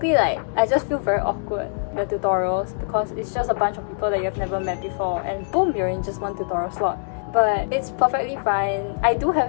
like, I just feel very awkward, the tutorials, because it's just a bunch of people that you've never met before, and boom, you're in just one tutorial slot. But it's perfectly fine. I do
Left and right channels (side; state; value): right; silent; digital silence